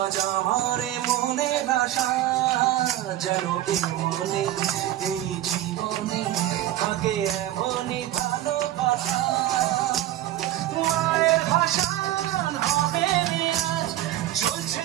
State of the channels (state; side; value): quieter; left; 13.7 dB